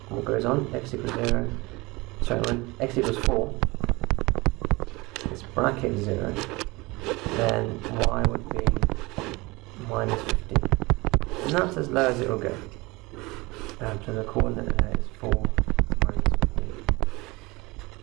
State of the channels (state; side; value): quieter; left; 23.3 dB